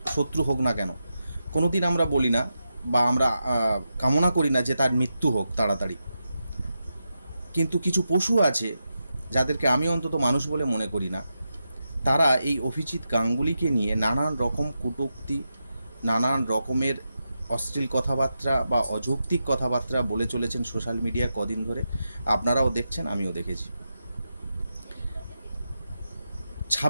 শত্রু হোক না কেন, কোনো দিন আমরা বলি না বা আমরা কামনা করি না যে তার মৃত্যু হোক তাড়াতাড়ি। কিন্তু কিছু পশু আছে যাদেরকে আমি অন্তত মানুষ বলে মনে করি না। তারা এই অভিজিৎ গাঙ্গুলিকে নিয়ে নানান রকম কটূক্তি, নানান রকমের অশ্লীল কথাবার্তা বা অযৌক্তিক কথাবার্তা বলে চলেছেন সোশ্যাল মিডিয়া কদিন ধরে। আপনারাও দেখছেন, আমিও দেখেছি।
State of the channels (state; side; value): inverted; both; correlation -0.88